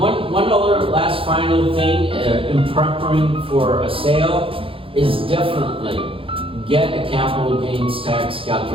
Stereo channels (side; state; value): left; late; 0.26 ms